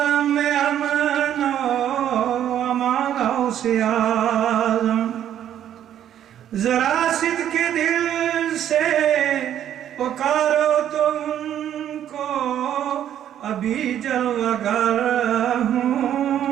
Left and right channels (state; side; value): quieter; left; 10.6 dB